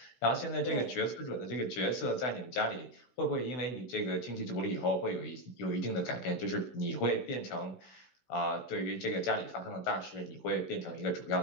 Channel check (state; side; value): late; right; 16 ms